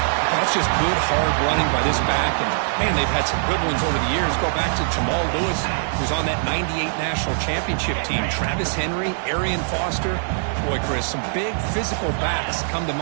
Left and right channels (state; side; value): silent; left; digital silence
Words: That's just good, hard running by this back. And, man, they've had some good ones over the years. Go back to Jamal Lewis, who's on that 98 National Championship team. Travis Henry, Arian Foster. Boy, Chris, some big physical backs come to